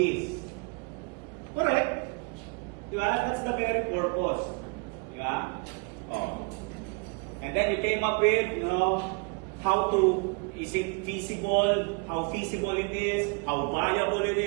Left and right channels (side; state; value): left; quieter; 32.8 dB